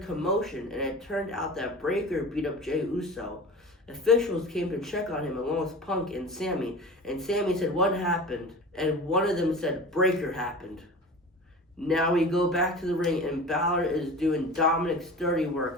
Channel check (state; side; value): normal; both; correlation 0.35